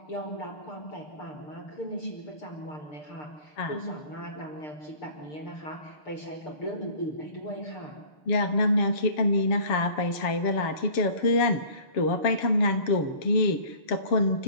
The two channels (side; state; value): right; late; 6.7 ms